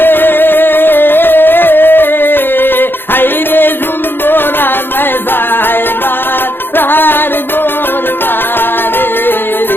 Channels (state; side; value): late; right; 0.10 ms